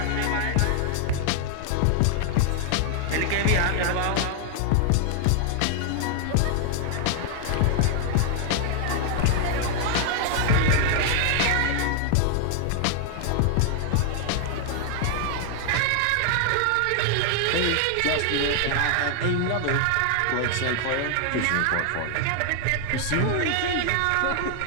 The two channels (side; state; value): both; different; correlation 0.00